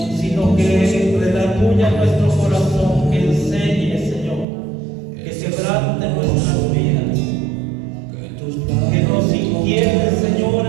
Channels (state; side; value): drops out; left; at 4.5 s